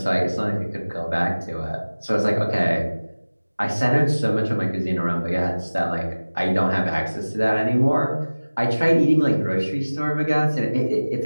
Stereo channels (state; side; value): inverted; both; correlation -1.00